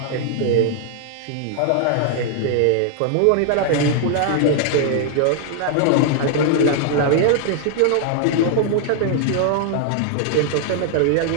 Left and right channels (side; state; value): both; different; correlation -0.01